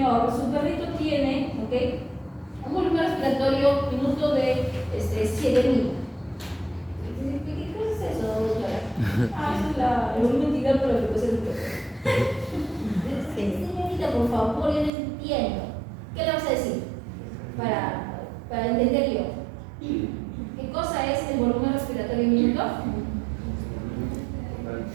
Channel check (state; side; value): drops out; left; at 14.9 s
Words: su perrito tiene, ¿ok?